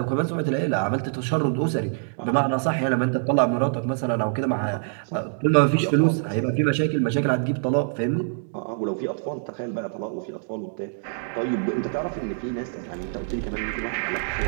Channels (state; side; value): silent; left; digital silence